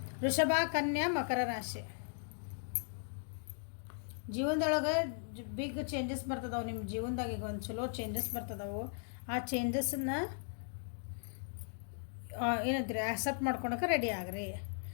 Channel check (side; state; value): right; silent; digital silence